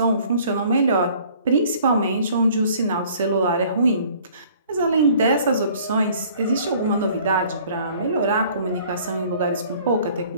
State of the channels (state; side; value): inverted; both; correlation -0.54